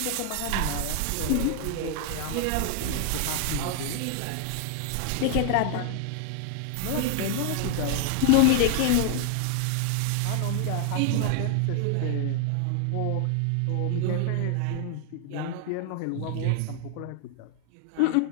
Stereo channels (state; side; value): different; both; correlation 0.00